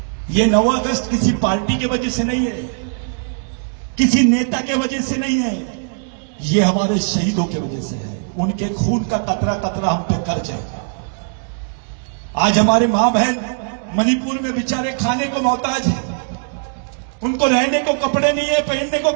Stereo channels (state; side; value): silent; left; digital silence